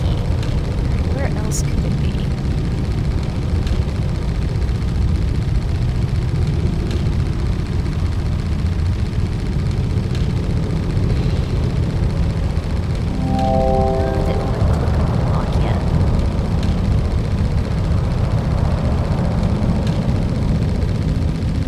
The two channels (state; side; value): identical; both; correlation 1.00